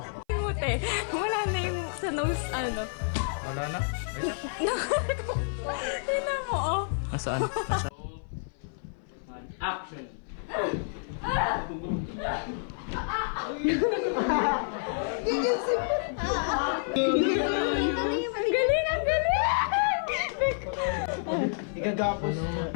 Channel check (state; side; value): silent; right; 56 dB below the other